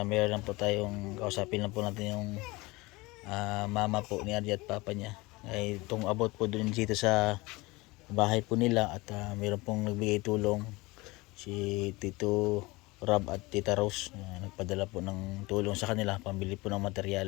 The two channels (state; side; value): quieter; right; 22.8 dB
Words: mayroon lang po tayong kausapin lang po natin yung mama po ni RJ at papa niya. Ay itong about po dun dito sa bahay po nila at mayroon pong nagbigay tulong si Tito Rob at Tita Rose. Nagpadala po ng tulong sa kanila pambili po ng